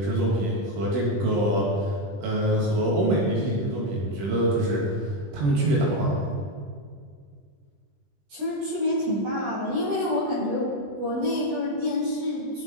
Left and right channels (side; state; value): left; late; 20 ms